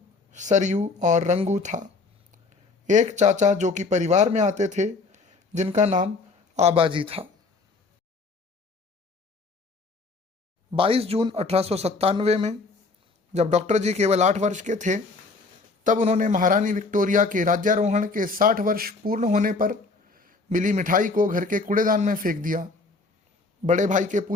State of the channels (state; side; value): quieter; right; 3.9 dB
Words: सरयू और रंगू था। एक चाचा जो कि परिवार में आते थे, जिनका नाम आबाजी था। 22 जून 1897 में जब डॉक्टर जी केवल 8 वर्ष के थे, तब उन्होंने महारानी विक्टोरिया के राज्यारोहण के 60 वर्ष पूर्ण होने पर मिली मिठाई को घर के कूड़ेदान में फेंक दिया। बड़े भाई के